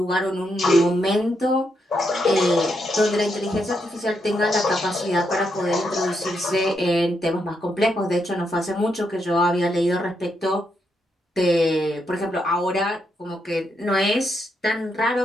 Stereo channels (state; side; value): normal; both; correlation 0.80